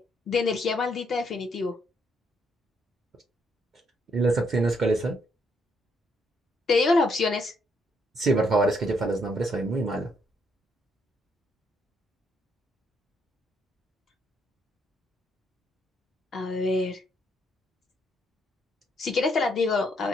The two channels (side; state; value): both; normal; correlation 0.73